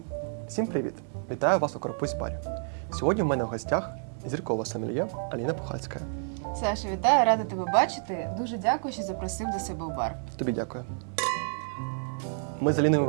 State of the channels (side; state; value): left; silent; digital silence